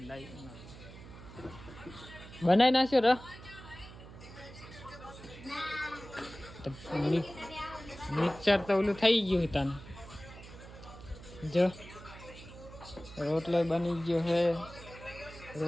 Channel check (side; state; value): right; noise; hum, 16 dB below the sound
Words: બનાવી નાખ્યો ર. મિક્સર તો ઓલું થઈ ગયું તને. જો રોટલો બની ગયો હે,